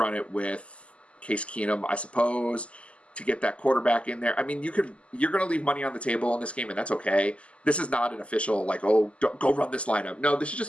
it with Case Keenum, I suppose, to get that quarterback in there. I mean, you're going to leave money on the table in this game, and that's okay. This is not an official, like, oh, go run this lineup. No, this is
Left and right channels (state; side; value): late; right; 0.058 ms